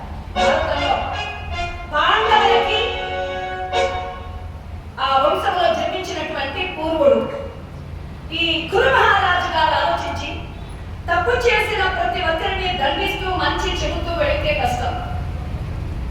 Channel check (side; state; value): both; identical; correlation 1.00